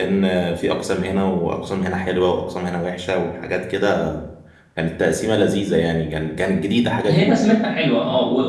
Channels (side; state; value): both; identical; correlation 1.00